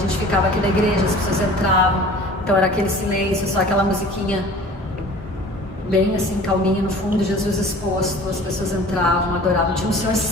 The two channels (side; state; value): both; normal; correlation 0.45